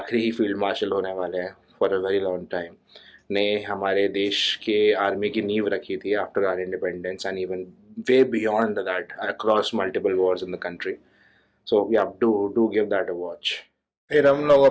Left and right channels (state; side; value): identical; both; correlation 1.00